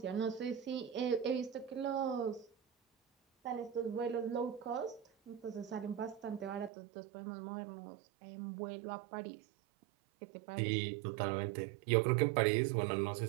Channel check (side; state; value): left; drops out; at 6.7 s